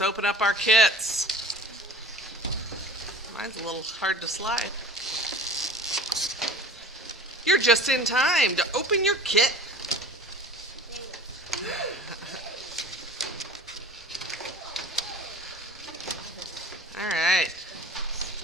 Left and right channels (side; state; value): both; normal; correlation 0.42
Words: open up our kits. Mine's a little hard to slide. You're just in time to open your kit. All right.